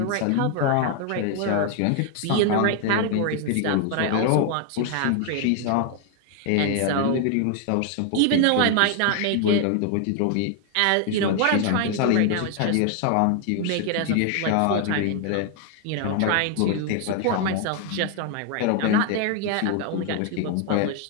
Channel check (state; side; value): different; both; correlation 0.00